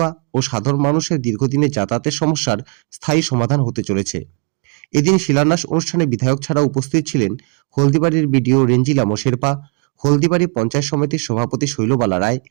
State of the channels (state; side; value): quieter; left; 35.3 dB